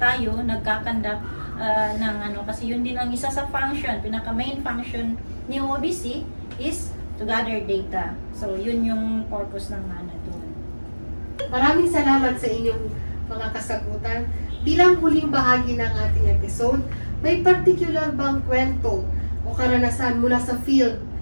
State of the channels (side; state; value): both; inverted; correlation -1.00